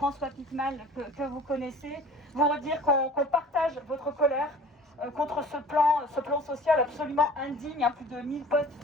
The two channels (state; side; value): normal; both; correlation 0.46